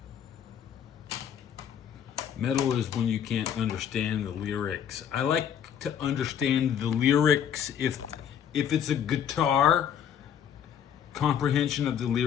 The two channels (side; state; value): right; quieter; 8.9 dB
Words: Metal is when you can't understand the lyrics. I like to understand the lyrics if it's a guitar. Comprehension of the